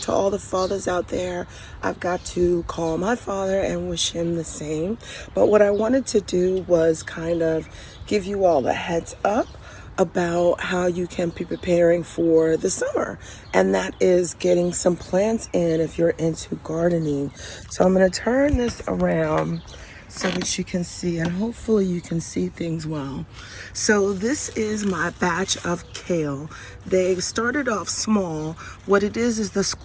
all the fathers out there. I've got to call my father and wish him the same. But what I wanted to do was kind of give you all a heads up about how you can be preparing for the summer, and that is getting some plants in if you're into gardening. So I'm going to turn this around so that you can see, and hopefully you can see things well. So this is my batch of kale. They started off small. What it is the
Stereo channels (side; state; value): both; identical; correlation 1.00